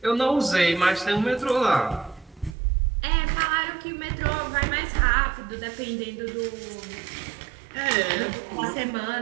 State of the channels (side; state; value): left; drops out; at 2.6 s